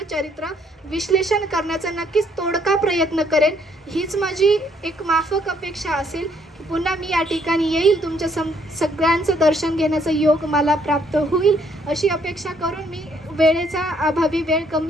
चरित्र विश्लेषण करण्याचा नक्कीच तोडका प्रयत्न करेन. हीच माझी एक माफक अपेक्षा असेल की पुन्हा मी या ठिकाणी येईल, तुमच्या सगळ्यांचं दर्शन घेण्याचा योग मला प्राप्त होईल अशी अपेक्षा करून मी वेळेचा अभावी, वेळ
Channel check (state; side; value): normal; both; correlation 0.68